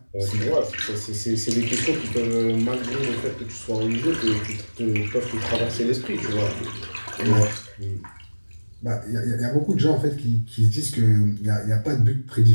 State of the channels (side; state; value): both; inverted; correlation -1.00